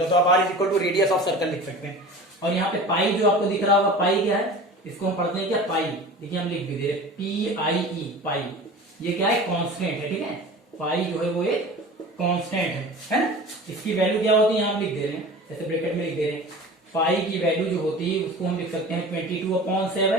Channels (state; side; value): normal; both; correlation 0.37